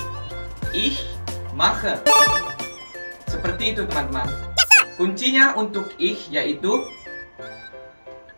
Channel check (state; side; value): inverted; both; correlation -1.00